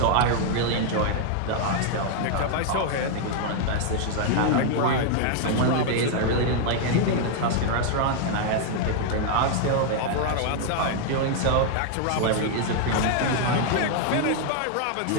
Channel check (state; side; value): different; both; correlation 0.00